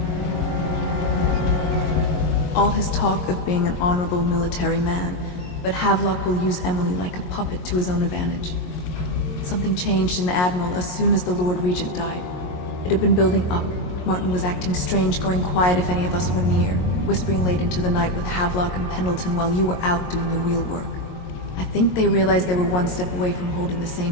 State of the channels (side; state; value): right; late; 22 ms